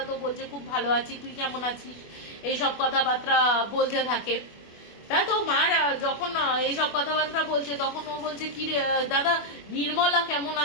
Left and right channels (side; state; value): right; late; 25 ms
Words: তো বলছে খুব ভালো আছি, তুই কেমন আছিস, এইসব কথাবার্তা বলতে থাকে। তা তো মার যখন এইসব কথাবার্তা বলছে, তখন ও বলছে কি দাদা, নির্মলা কেমন